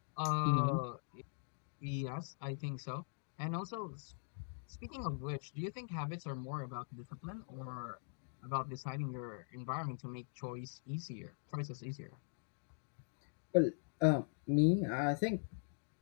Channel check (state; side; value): silent; right; digital silence